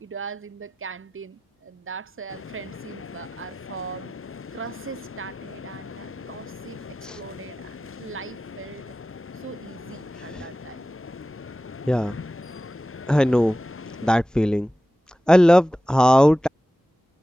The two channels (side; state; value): both; normal; correlation 0.94